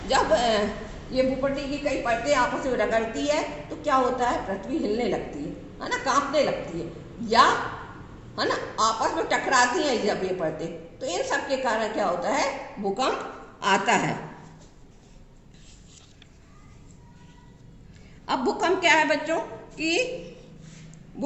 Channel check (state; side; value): identical; both; correlation 1.00